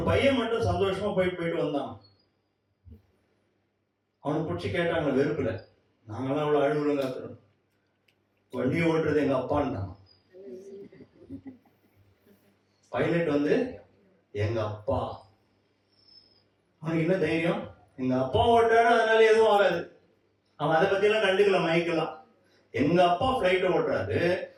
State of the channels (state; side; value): identical; both; correlation 1.00